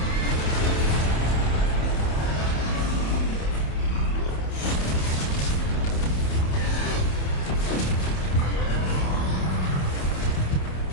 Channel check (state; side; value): late; right; 27 ms